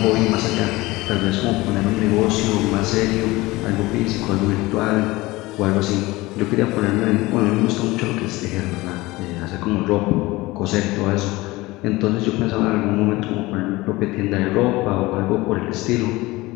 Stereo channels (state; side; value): quieter; right; 20.5 dB